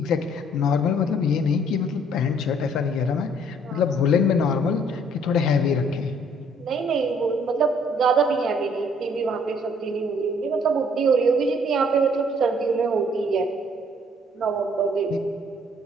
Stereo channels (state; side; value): normal; both; correlation 0.61